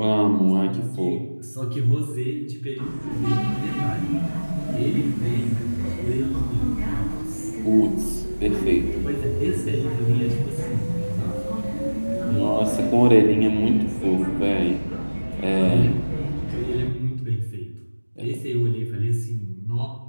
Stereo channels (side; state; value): both; inverted; correlation -1.00